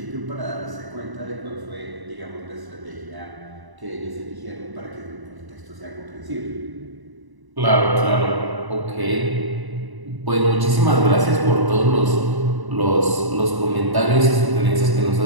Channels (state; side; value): late; left; 1.0 ms